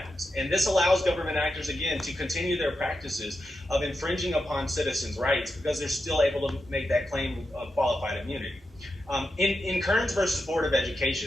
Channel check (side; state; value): both; normal; correlation 0.88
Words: And this allows government actors, again, to continue their practices of infringing upon citizens' rights because they're still able to make that claim of qualified immunity. In Kearns versus Board of